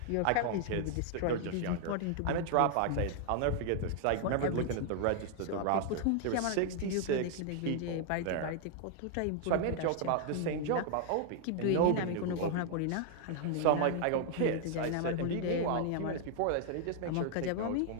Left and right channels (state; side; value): different; both; correlation 0.00